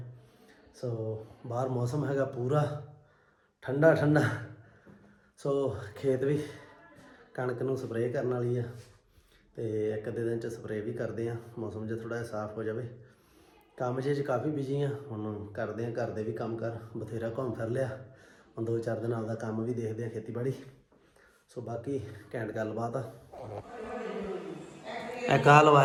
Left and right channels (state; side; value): identical; both; correlation 1.00